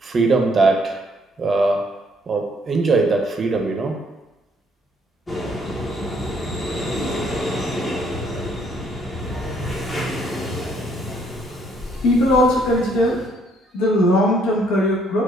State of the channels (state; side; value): normal; both; correlation 0.66